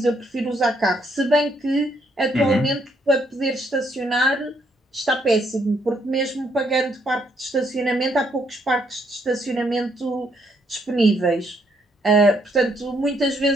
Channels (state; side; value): normal; both; correlation 0.72